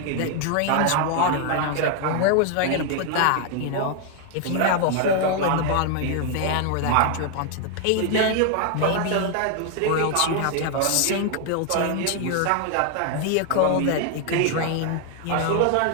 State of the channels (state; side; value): different; both; correlation 0.00